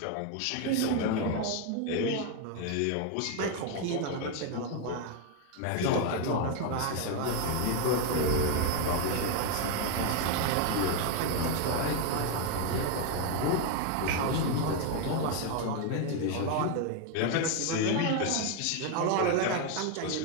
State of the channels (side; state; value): both; different; correlation 0.01